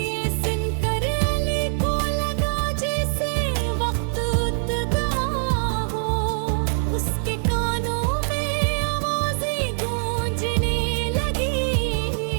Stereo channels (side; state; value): left; silent; digital silence